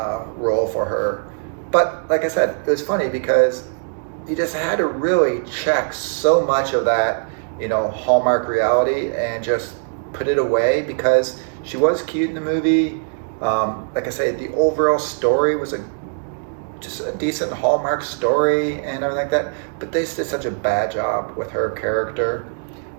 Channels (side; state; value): left; silent; digital silence